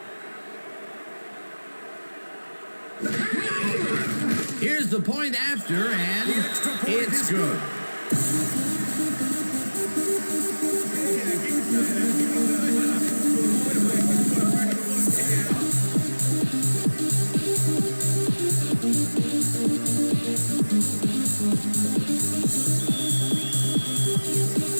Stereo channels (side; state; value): both; inverted; correlation -1.00